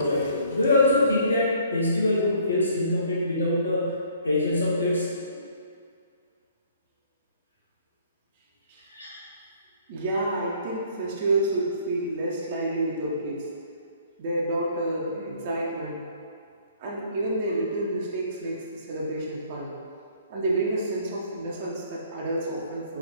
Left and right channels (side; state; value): both; inverted; correlation -0.60